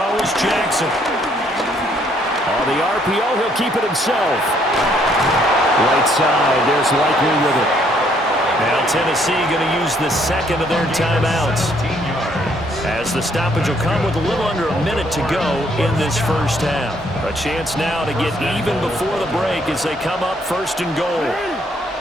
is Jackson. On the RPO, he'll keep it himself. Right side, there's Likely with it. Now Tennessee going to use the second of their timeouts. As the stoppage will come with a little under a minute to go in this first half. A chance now to get even before the break as they come up first and goal.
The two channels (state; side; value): normal; both; correlation 0.67